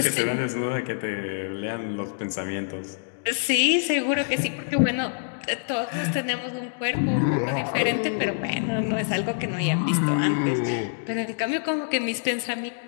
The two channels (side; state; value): right; silent; digital silence